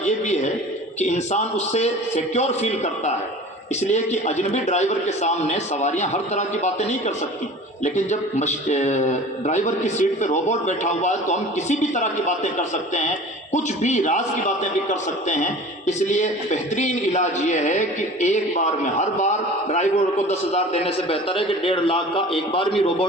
یہ بھی ہے کہ انسان اس سے سیکیور فیل کرتا ہے، اس لیے کہ اجنبی ڈرائیور کے سامنے سواریاں ہر طرح کی باتیں نہیں کر سکتی، لیکن جب ڈرائیور کی سیٹ پہ روبوٹ بیٹھا ہوا ہے تو ہم کسی بھی طرح کی باتیں کر سکتے ہیں، کچھ بھی راز کی باتیں بھی کر سکتے ہیں۔ اس لیے بہترین علاج یہ ہے کہ ایک بار میں، ہر بار ڈرائیور کو 10,000 دینے سے بہتر ہے کہ 1.5 لاکھ کا ایک بار بھی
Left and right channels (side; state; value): both; normal; correlation 0.41